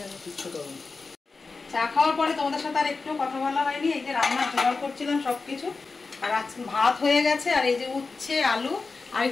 যাবে, কিচ্ছু করুন। চা খাওয়ার পরে তোমাদের সাথে আর একটু কথা বলা হয়নি। এই যে রান্নার জোগাড় করছিলাম সব কিছু, আর আজকে ভাত হয়ে গেছে, আর এই যে উচ্ছে আলু আর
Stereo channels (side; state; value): right; quieter; 4.1 dB